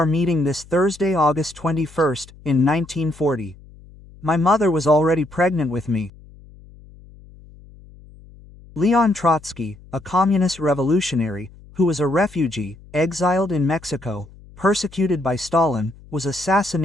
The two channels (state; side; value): noise; left; hum, 22 dB below the sound